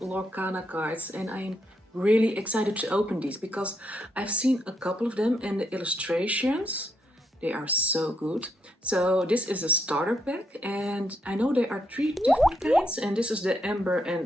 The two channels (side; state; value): both; normal; correlation 0.78